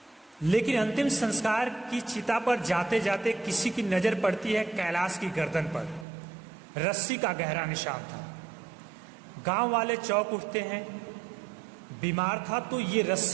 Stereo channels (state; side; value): drops out; left; at 6.1 s